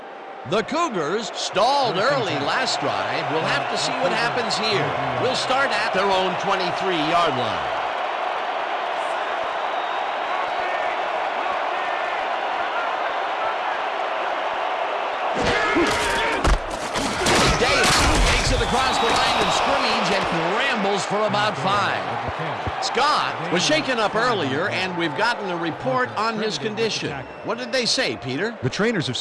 The Cougars stalled early last drive. We'll have to see what happens here. We'll start at their own 23-yard line. Takes it across the line of scrimmage and rambles for about 5. Scott was shaken up earlier, and we've gotten a report on his condition. What did they say, Peter? The trainers have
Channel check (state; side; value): identical; both; correlation 1.00